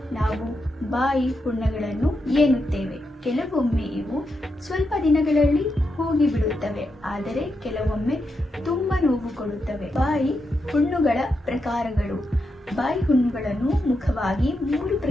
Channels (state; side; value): normal; both; correlation 0.85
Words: ನಾವು ಬಾಯಿ ಹುಣ್ಣುಗಳನ್ನು ಎನ್ನುತ್ತೇವೆ. ಕೆಲವೊಮ್ಮೆ ಇವು ಸ್ವಲ್ಪ ದಿನಗಳಲ್ಲಿ ಹೋಗಿಬಿಡುತ್ತವೆ, ಆದರೆ ಕೆಲವೊಮ್ಮೆ ತುಂಬ ನೋವು ಕೊಡುತ್ತವೆ. ಬಾಯಿ ಹುಣ್ಣುಗಳ ಪ್ರಕಾರಗಳು. ಬಾಯಿ ಹುಣ್ಣುಗಳನ್ನು ಮುಖ್ಯವಾಗಿ 3